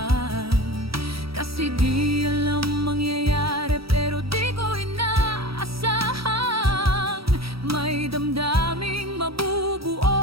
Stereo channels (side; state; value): left; late; 0.76 ms